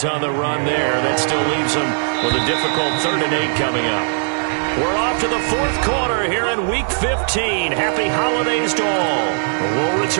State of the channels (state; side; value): silent; left; digital silence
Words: on the run there. That still leaves him with a difficult 3rd and 8 coming up. We're off to the 4th quarter here in Week 15. Happy holidays to all. We'll